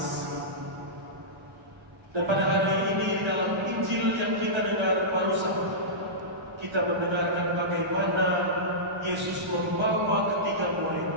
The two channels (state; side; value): normal; both; correlation -0.16